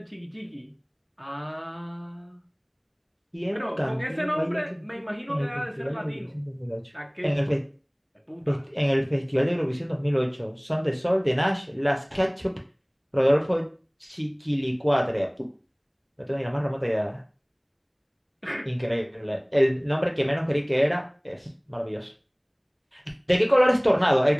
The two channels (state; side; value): identical; both; correlation 1.00